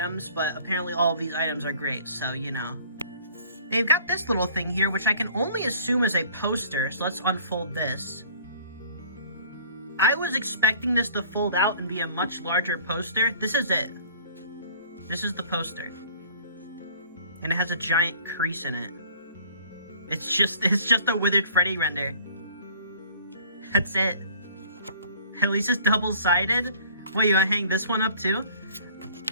but apparently all of these items are great, so, you know. They've got this little thing here, which I can only assume is a poster, so let's unfold this. I was expecting this to fold out and be a much larger poster. This is it. This is the poster. And it has a giant crease in it. It's just a Withered Freddy render. That's it. At least it's double-sided. What, you wanna hang this one up too?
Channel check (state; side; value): inverted; both; correlation -0.51